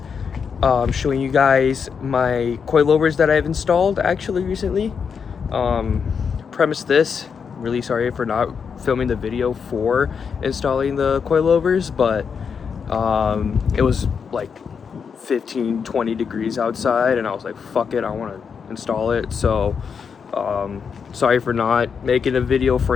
showing you guys my coilovers that I've installed actually recently. Premise this, really sorry for not filming the video for installing the coilovers, but it was like 15-20 degrees outside and I was like, fuck it, I want to install it. So sorry for not making a video for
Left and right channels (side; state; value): right; quieter; 6.3 dB